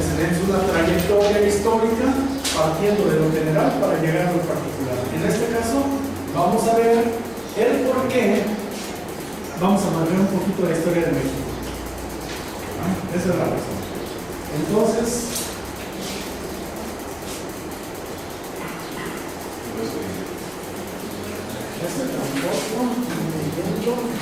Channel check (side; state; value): left; noise; hum, 25 dB below the sound